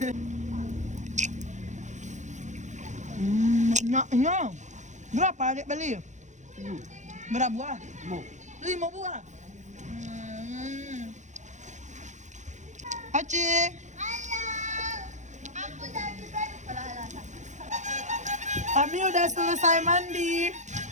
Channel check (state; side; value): late; left; 0.35 ms